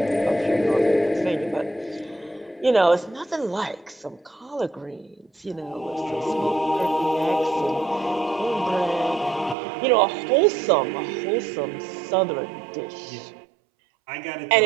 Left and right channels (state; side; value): drops out; left; at 9.6 s